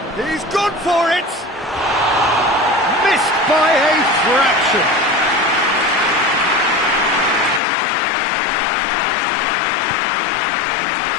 He's gone for it! Missed by a fraction.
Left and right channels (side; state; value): right; drops out; at 7.6 s